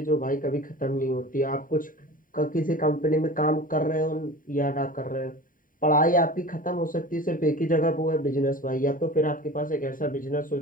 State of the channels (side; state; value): right; late; 0.40 ms